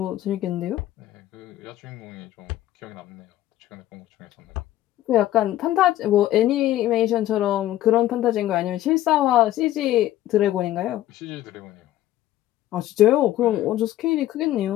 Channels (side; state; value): right; quieter; 13.9 dB